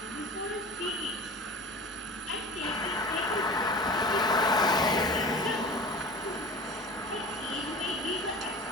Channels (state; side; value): normal; both; correlation 0.37